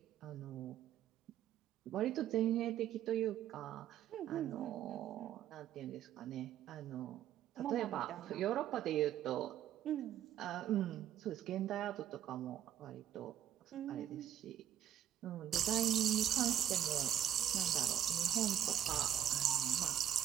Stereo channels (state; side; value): quieter; left; 10.9 dB